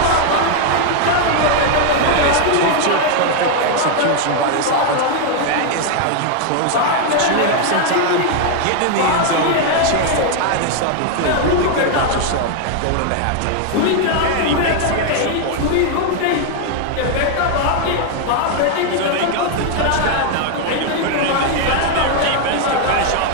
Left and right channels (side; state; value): both; different; correlation 0.00